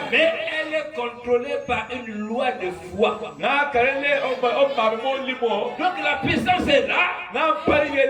Mais elle est contrôlée par une loi de foi. Donc la puissance est là.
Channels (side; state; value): both; identical; correlation 1.00